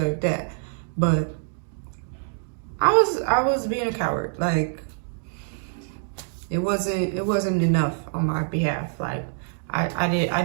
that. But I was being a coward. Like, it wasn't enough on my behalf. Like, I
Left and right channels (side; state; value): left; silent; digital silence